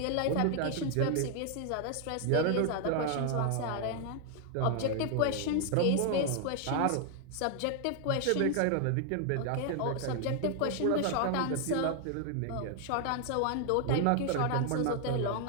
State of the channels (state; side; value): different; both; correlation 0.00